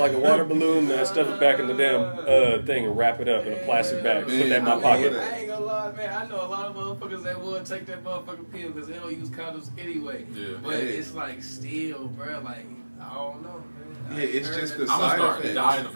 a water balloon, and I stuff it back in the damn thing and wrap it up in a plastic bag. Put that in my pocket. I ain't gonna lie, man. I know a lot of motherfuckers that would take that motherfucking pill because they don't use condoms anyway. Yeah. But it's like still, bro. Like I don't know, man. Yeah, it's just the I'm gonna side start effects. dying the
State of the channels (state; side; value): inverted; both; correlation -1.00